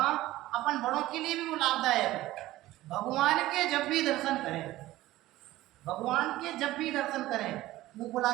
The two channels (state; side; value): quieter; left; 16.3 dB